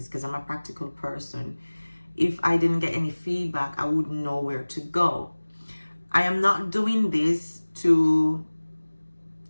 because I'm a practical person, if I didn't get any feedback, I wouldn't know where to go. I am not doing this to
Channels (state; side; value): inverted; both; correlation -1.00